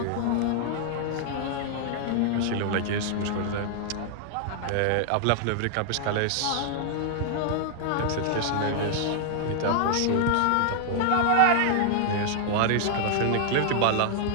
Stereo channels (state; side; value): different; both; correlation 0.00